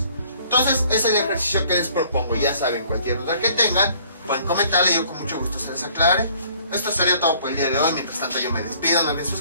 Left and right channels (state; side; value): inverted; both; correlation -0.58